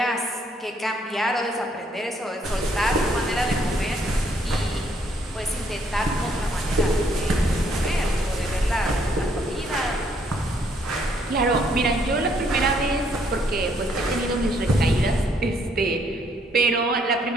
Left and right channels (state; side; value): normal; both; correlation 0.68